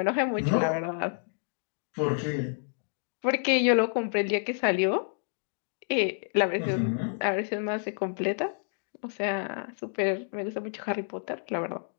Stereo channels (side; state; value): right; silent; digital silence